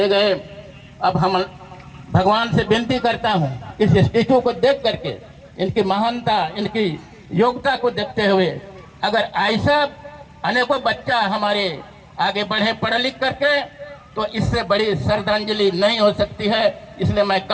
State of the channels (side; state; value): both; identical; correlation 1.00